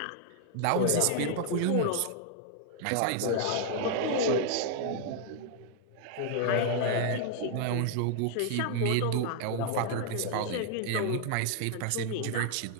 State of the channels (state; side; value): different; both; correlation 0.00